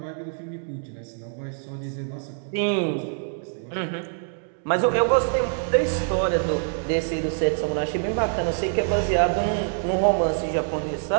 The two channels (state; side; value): silent; left; digital silence